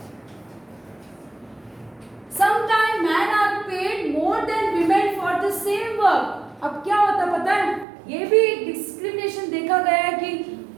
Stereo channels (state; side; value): drops out; left; at 7.9 s